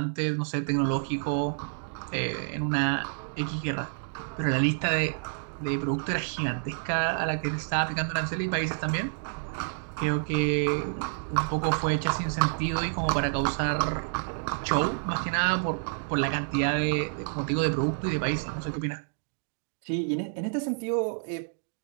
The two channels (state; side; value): silent; left; digital silence